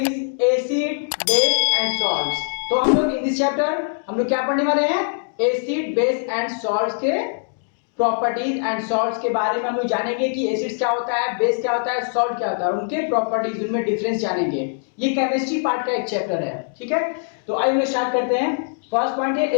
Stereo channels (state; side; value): silent; right; digital silence